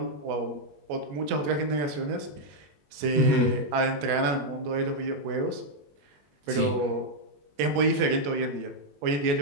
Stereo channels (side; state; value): left; late; 21 ms